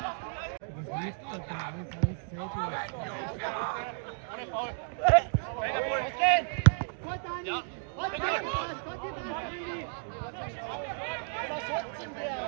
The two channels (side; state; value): left; silent; 56 dB below the other